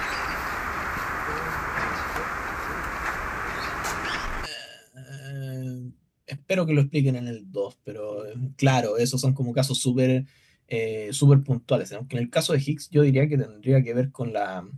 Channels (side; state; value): both; identical; correlation 1.00